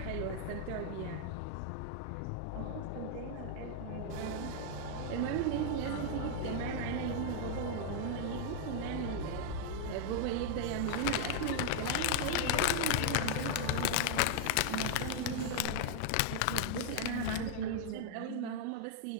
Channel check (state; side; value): different; both; correlation 0.00